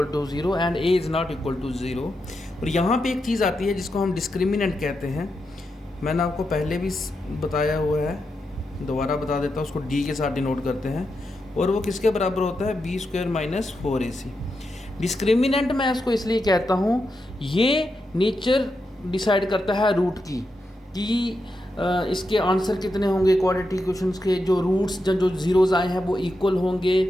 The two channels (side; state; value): both; normal; correlation 0.86